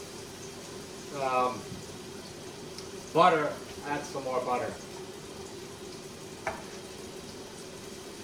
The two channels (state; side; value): noise; left; rumble, 27 dB below the sound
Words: butter, add some more butter.